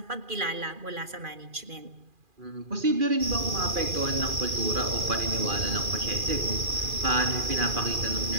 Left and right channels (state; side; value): late; left; 2.4 ms